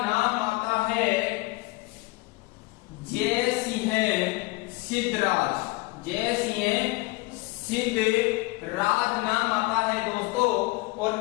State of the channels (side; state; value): right; quieter; 23.3 dB